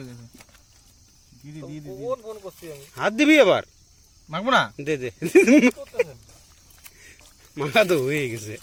দিয়ে দে। ফোন করছি আমি। হাত দিবি আবার? মাখবো না, দে দে। মাখা তো হয়ে গেছে।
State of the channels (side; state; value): both; identical; correlation 1.00